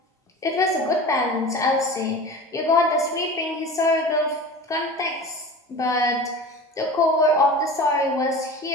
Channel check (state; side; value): normal; both; correlation 0.35